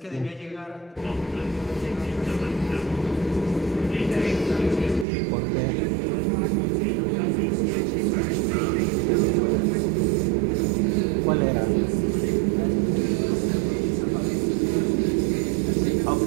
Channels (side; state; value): left; drops out; at 5.1 s